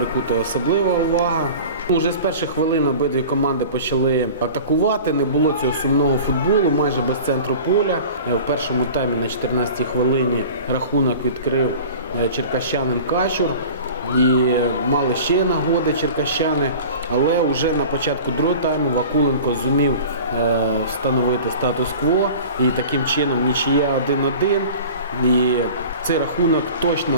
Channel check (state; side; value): inverted; both; correlation -0.39